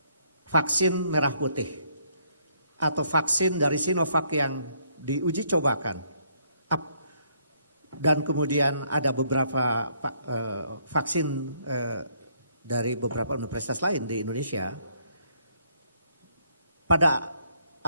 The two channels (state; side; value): inverted; both; correlation -0.69